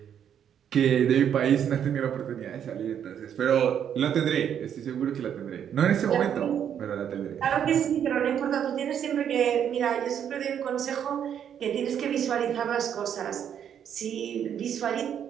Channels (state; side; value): quieter; left; 8.9 dB